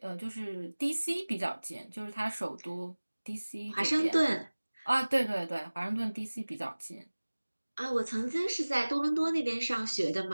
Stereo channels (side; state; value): both; inverted; correlation -1.00